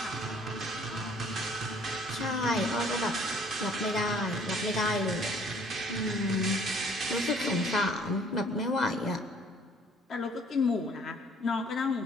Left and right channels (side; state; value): both; normal; correlation 0.57